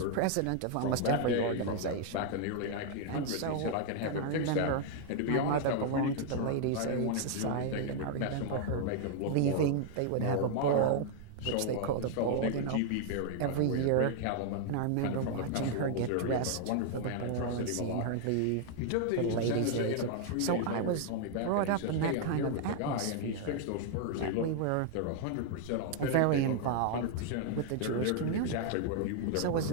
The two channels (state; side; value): different; both; correlation 0.00